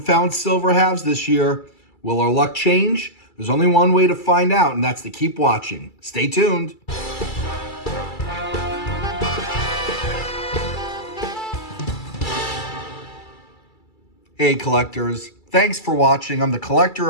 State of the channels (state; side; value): late; right; 2.3 ms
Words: found silver halves this year. Will our luck change? There's only one way to find out, and that's to keep watching. Stay tuned. Hey collectors, thanks for watching. I'm the collector